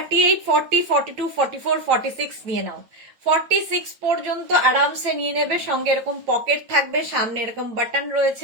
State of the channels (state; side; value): late; left; 9.0 ms